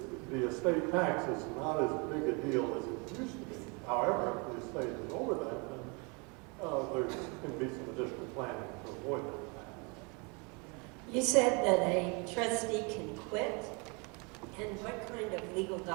The estate tax is not as big a deal as it used to be. However, if the estate is over that, then there can be some additional planning to avoid that tax. You said that a trustee can quit, and what kind of legal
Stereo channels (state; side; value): quieter; left; 31.6 dB